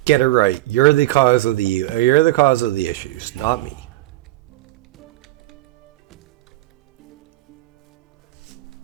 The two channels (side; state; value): left; quieter; 17.5 dB